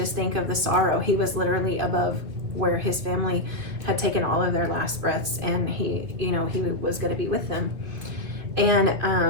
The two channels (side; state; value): left; late; 2.5 ms